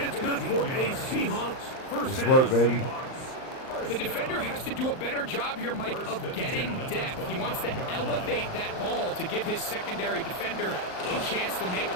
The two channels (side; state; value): right; late; 39 ms